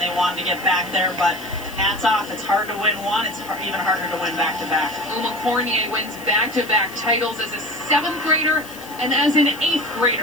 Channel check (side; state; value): left; noise; hiss, 18 dB below the sound